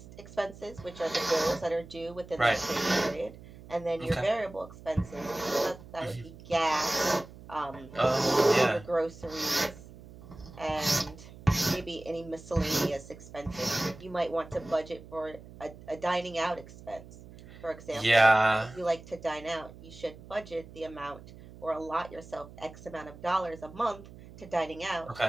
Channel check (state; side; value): noise; right; hum, 18 dB below the sound